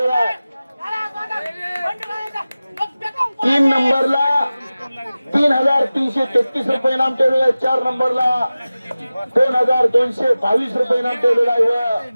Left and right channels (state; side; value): inverted; both; correlation -0.97